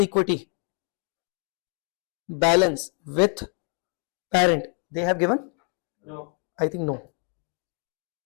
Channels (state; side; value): quieter; right; 38.1 dB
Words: equity balance with parent. They have given? No. I think no.